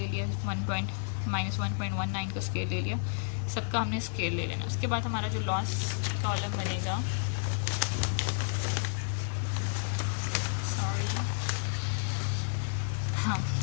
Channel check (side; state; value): right; silent; 57 dB below the other